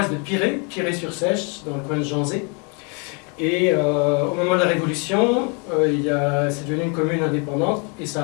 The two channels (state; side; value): quieter; right; 34.6 dB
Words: de Piré-sur-Sèche, dans le coin de Janzé. Et au moment de la Révolution, c'est devenu une commune indépendante et ça